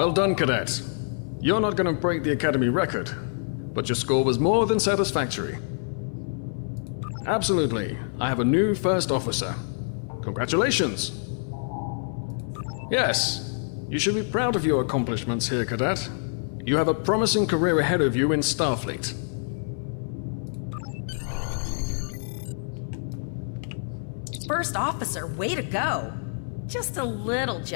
done, Cadet. You're not going to break the Academy record, but your score was more than satisfactory. Absolutely. I have a new first officer. Congratulations. Yes, you should be proud of your accomplishments here, Cadet. You have a promising career ahead of you in Starfleet. First officer, way to go! Just a little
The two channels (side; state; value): right; silent; 58 dB below the other